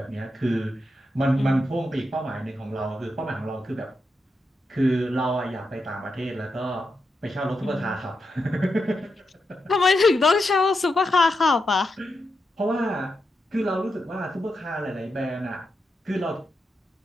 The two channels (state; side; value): normal; both; correlation 0.86